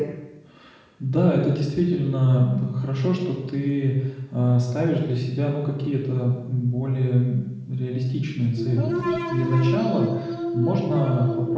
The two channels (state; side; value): identical; both; correlation 1.00